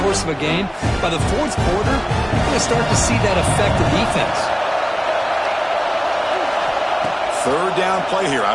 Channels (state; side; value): identical; both; correlation 1.00